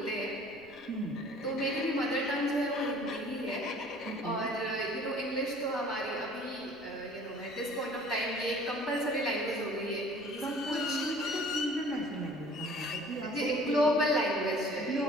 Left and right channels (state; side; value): noise; right; rumble, 27 dB below the sound